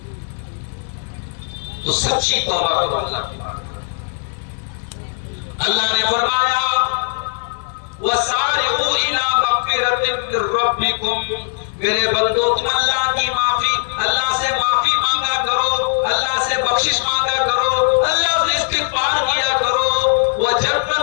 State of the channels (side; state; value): right; silent; 67 dB below the other